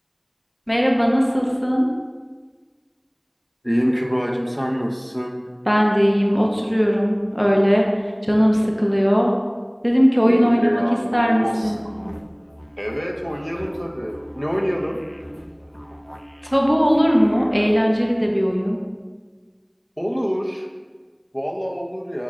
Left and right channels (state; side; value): identical; both; correlation 1.00